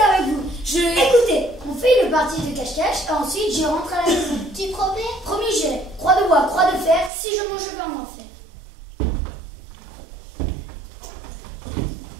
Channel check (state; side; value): drops out; left; at 7.1 s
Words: avec vous. Je... Écoutez, on fait une partie de cache-cache et ensuite j'y rentre à la maison. Tu promets? Promis, j'irai. Croix de bois, croix de fer, si je mange, je vais en enfer.